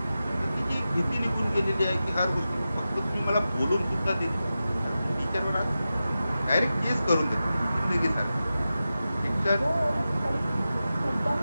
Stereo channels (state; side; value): inverted; both; correlation -0.92